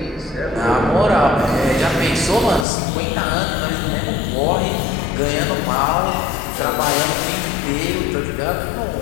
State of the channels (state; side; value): drops out; right; at 2.7 s